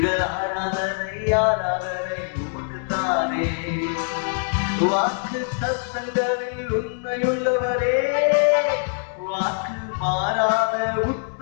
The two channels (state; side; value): silent; right; digital silence